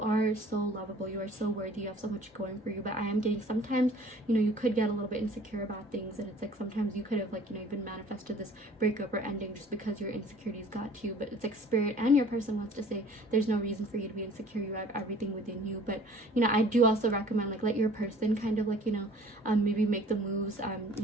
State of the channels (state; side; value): normal; both; correlation 0.50